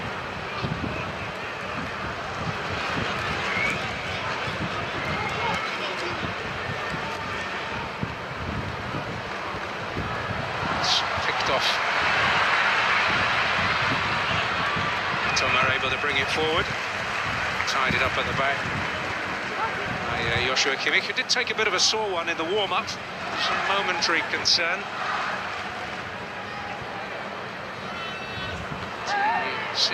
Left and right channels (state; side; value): identical; both; correlation 1.00